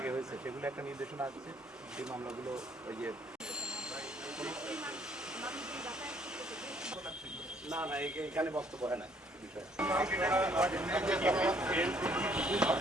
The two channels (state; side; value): normal; both; correlation 0.64